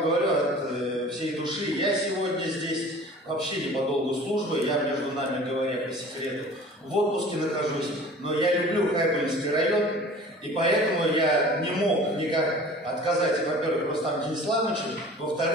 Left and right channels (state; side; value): normal; both; correlation 0.44